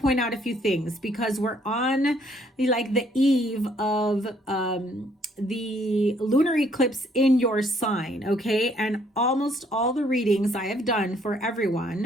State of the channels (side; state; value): both; normal; correlation 0.65